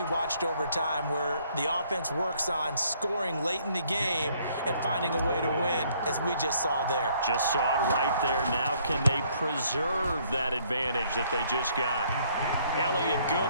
watched over time where the offense works on scoring late in the game and finding a way to win, as we just saw there. Just saw it right there. Now can they preserve that advantage that they just got? Elliott good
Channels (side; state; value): both; inverted; correlation -0.65